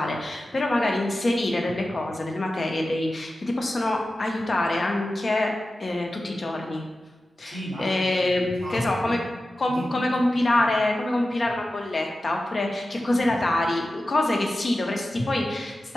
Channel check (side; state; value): both; normal; correlation 0.94